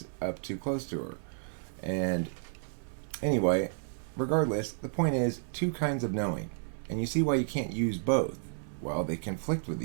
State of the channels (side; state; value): left; silent; digital silence